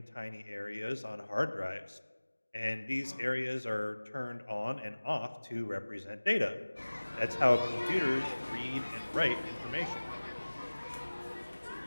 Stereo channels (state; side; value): inverted; both; correlation -1.00